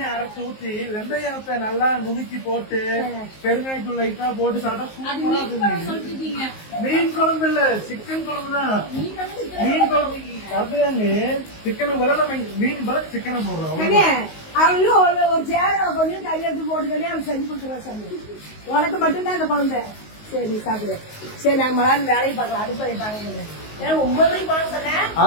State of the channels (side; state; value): right; late; 19 ms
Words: அரைச்சு ஊத்தி வெந்தயத்தை நல்லா நுணுக்கி போட்டு பெருங்காயத்தூள் லைட்டா போட்டு சாப்பிட்டா சூப்பரா இருக்கு. மீன் குழம்பு இல்ல, சிக்கன் குழம்பு தான். மீன் குழம்பு கரெக்டாங்க. சிக்கனுக்கு பதிலா நம்ம மீன் பதில் சிக்கனை போடுறோம். அவங்களும் ஒரு சேரை கொஞ்சம் கையெழுத்து போட்டுக்கனே அவங்க செஞ்சு கொடுத்துருவா சாமி. உனக்கு மட்டும்தான் இந்த குழந்தை. சரி சாப்பிடு. சரி நாங்க மலான்னு வேலையை பார்க்கலாம். அடுப்பதை பார்க்கணும். 9 மணிக்கு போகணும் சொன்னேன்.